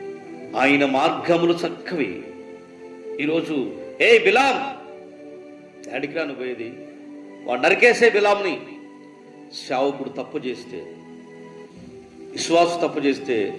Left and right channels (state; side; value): identical; both; correlation 1.00